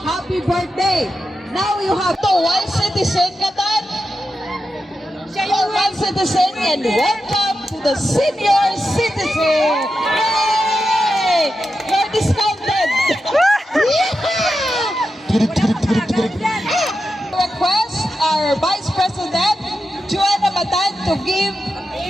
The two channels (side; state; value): both; normal; correlation 0.89